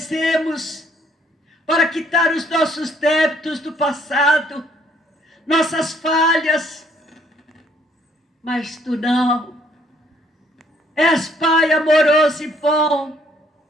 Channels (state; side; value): normal; both; correlation 0.65